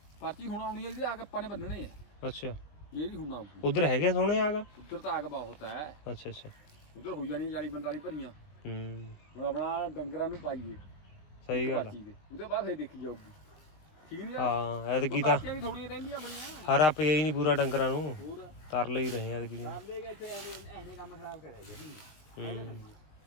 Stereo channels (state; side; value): late; right; 20 ms